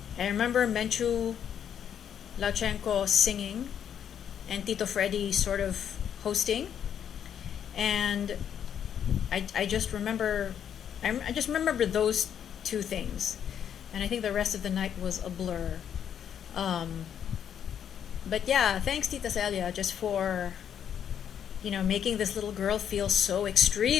I remember Menchu Lachenko singing and Tito Freddy sort of hosting. And I just remember, I just remember those two things. And I think the rest of the night was a blur. Um, but yeah, thanks Tita Celia just for, making this little girl feel so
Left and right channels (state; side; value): quieter; right; 8.9 dB